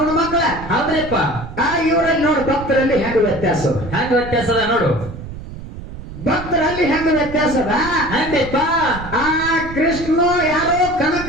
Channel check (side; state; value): right; noise; rumble, 12 dB below the sound